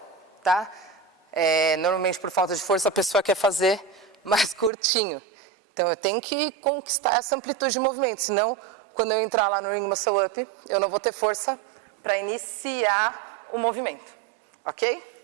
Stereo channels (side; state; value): left; drops out; at 4.7 s